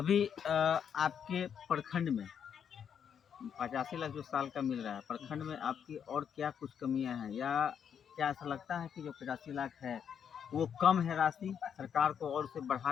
आपके प्रखंड में 85 लाख जो साल का मिल रहा है, प्रखंड में आपकी और क्या कुछ कमियां हैं, या क्या ऐसा लगता है कि जो 85 लाख है वो कम है राशि, सरकार को और उसे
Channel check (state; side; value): quieter; right; 8.0 dB